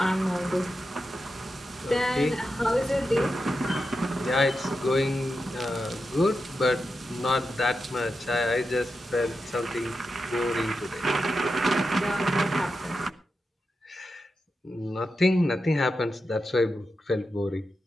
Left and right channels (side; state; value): both; normal; correlation 0.89